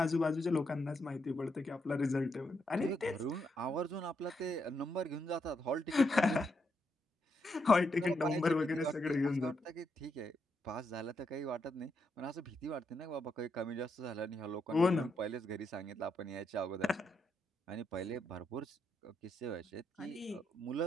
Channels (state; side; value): normal; both; correlation 0.80